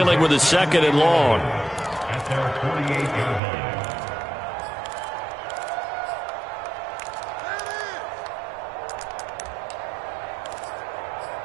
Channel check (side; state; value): left; drops out; at 3.4 s